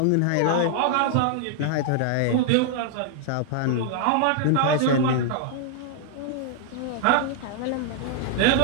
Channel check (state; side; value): different; both; correlation 0.00